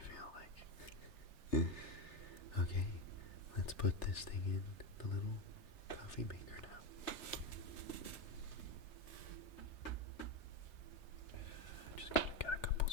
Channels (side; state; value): right; late; 3.1 ms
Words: like. Okay, let's put this thing in the little coffee maker now. Just gotta get a couple